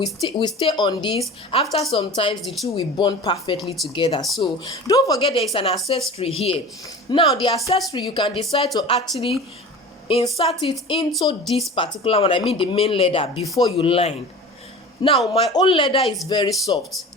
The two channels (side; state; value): both; normal; correlation 0.37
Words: stay on this. After some times, the two will bond perfectly together. So don't forget there is an accessory here. Now the accessory, you can decide to actually insert it into this particular one, I mean the main leather, before you line. Now my own leather is very soft.